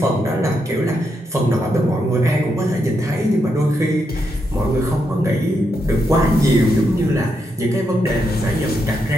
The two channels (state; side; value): normal; both; correlation 0.81